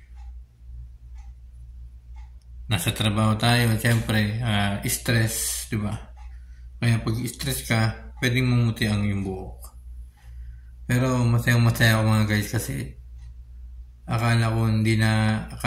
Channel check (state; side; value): identical; both; correlation 1.00